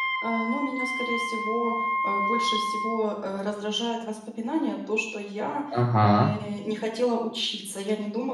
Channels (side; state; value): both; identical; correlation 1.00